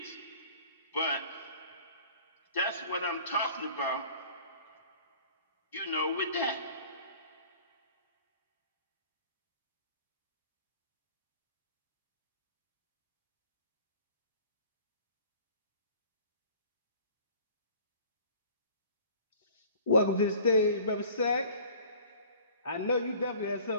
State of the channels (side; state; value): both; inverted; correlation -0.48